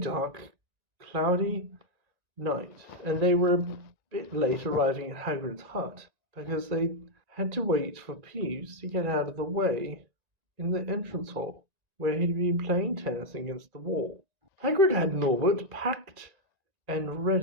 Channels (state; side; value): late; left; 1.9 ms